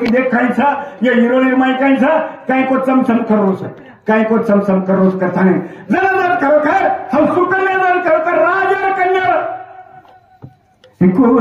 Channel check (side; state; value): both; identical; correlation 1.00